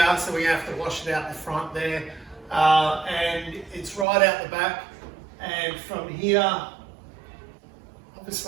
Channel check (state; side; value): drops out; left; at 4.0 s